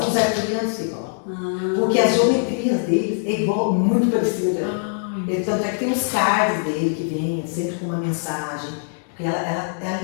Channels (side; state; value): right; silent; 64 dB below the other